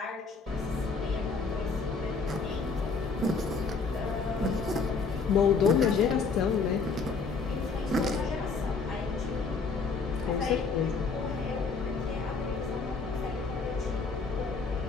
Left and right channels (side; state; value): right; quieter; 4.6 dB